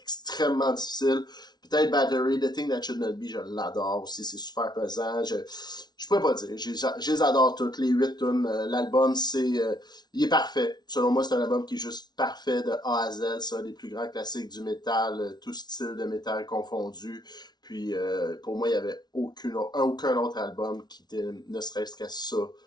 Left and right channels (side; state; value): right; late; 0.20 ms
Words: extrêmement difficile. Peut-être Battery, The Thing That Should Not Be, je l'adore aussi, c'est super pesant. Je pourrais pas dire, je les adore toutes, les 8 tunes. L'album, il est parfait. Selon moi, c'est un album qui est juste parfait de A à Z, ça, des plus grands classiques du métal, tout style de métal confondu. Puis, pour moi, il n'y avait aucun autre album qui était, ne serait-ce qu'à ça,